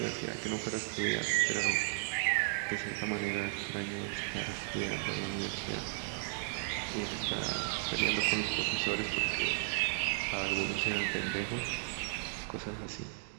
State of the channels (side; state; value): left; silent; digital silence